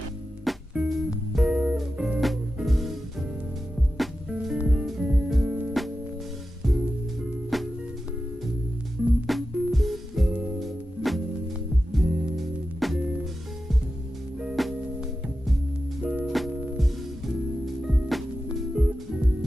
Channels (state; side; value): normal; both; correlation 0.92